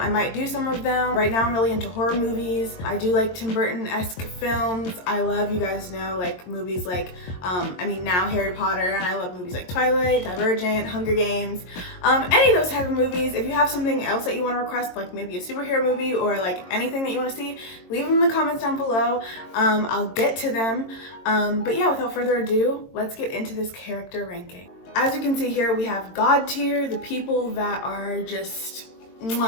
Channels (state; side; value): late; right; 22 ms